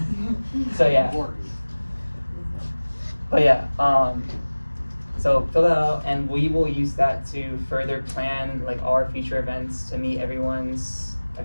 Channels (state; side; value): inverted; both; correlation -1.00